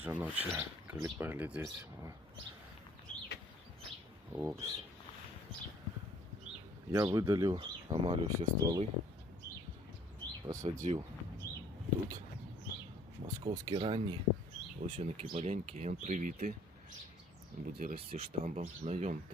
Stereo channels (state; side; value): normal; both; correlation 0.58